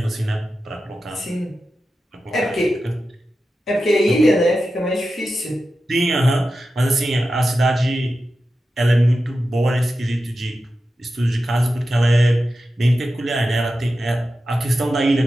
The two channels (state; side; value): normal; both; correlation 0.92